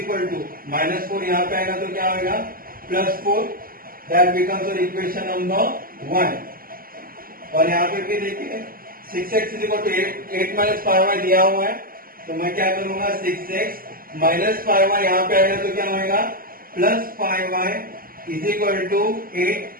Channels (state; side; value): late; left; 0.42 ms